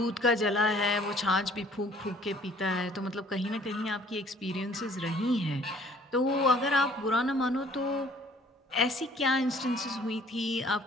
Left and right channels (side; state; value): both; normal; correlation 0.57